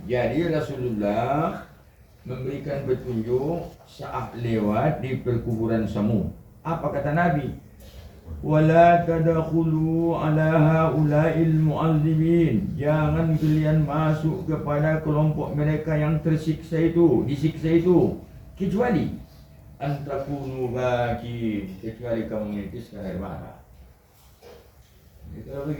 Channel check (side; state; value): both; identical; correlation 1.00